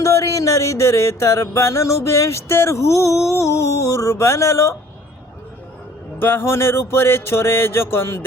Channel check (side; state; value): both; normal; correlation 0.53